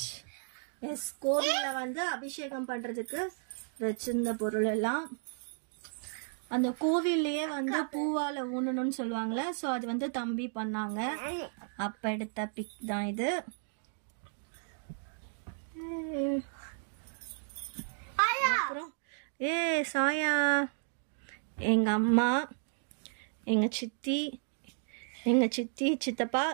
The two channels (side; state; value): left; silent; digital silence